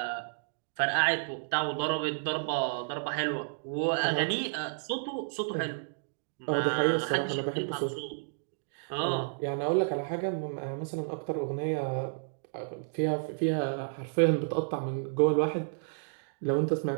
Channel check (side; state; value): left; silent; digital silence